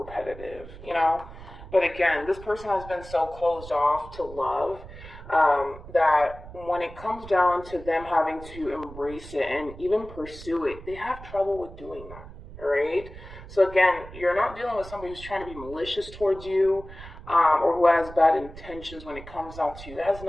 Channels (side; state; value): right; noise; rumble, 15 dB below the sound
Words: repetitive, you know? But again, this person has been so closed off to love that when it comes down to them having to embrace it and even pursue it, they have trouble with doing that, all right? So again, you're not dealing with somebody who's trying to be malicious towards you or who has bad intentions when it comes down to you. It has